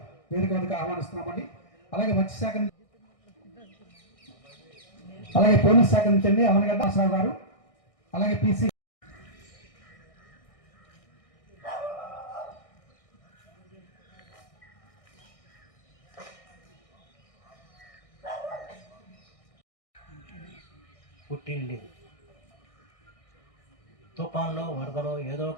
వేదిక వద్దకు ఆహ్వానిస్తున్నామండి. అలాగే మత్స్యశాఖ అలాగే పోలీస్ శాఖ నుంచి అండి అవనగడ్డ ఆశ్రావు గారు, అలాగే పిసి పుట్టింది. తుఫాన్లో, వరదలో ఏదో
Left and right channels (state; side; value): late; right; 1.6 ms